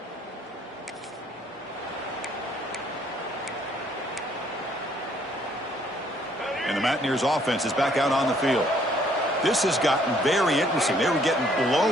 And the Mountaineers offense is back out on the field. This has gotten very interesting. They were getting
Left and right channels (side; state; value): both; normal; correlation 0.64